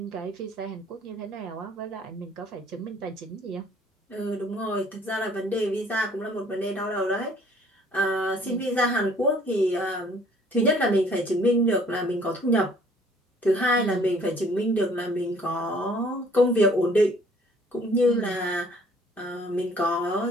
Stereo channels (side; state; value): both; normal; correlation 0.57